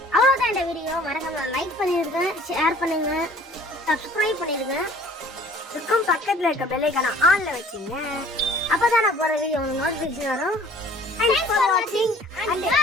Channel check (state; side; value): normal; both; correlation 0.52